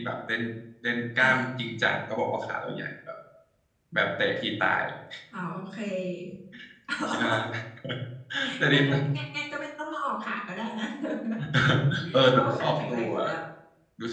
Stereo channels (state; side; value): identical; both; correlation 1.00